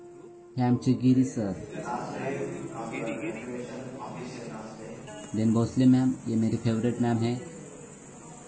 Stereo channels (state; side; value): identical; both; correlation 1.00